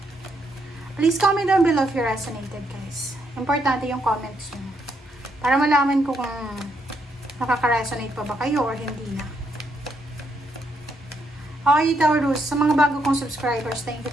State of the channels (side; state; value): both; normal; correlation 0.76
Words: Please comment down below if you resonated, guys. Importante yung comments nyo para malaman ko kung nakaka-resonate pa ba kayo or hindi na. Okay, Taurus, sa mga bago kong subscribers, thank